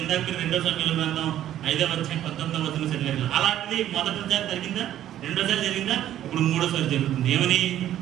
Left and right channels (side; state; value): left; quieter; 12.0 dB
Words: ఇందాక మీరు 2వ సమయంలో గ్రంథం 5వ అధ్యాయం 19వ వచనం చదివారు. అలాంటిది మొదటిసారి జరిగిందా? రెండోసారి జరిగిందా? ఇప్పుడు మూడోసారి జరుగుతుంది. ఏమని?